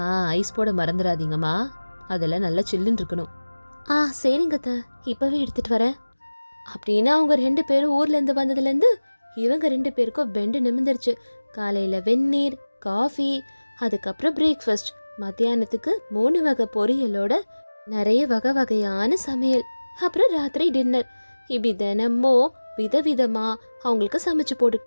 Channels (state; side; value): inverted; both; correlation -1.00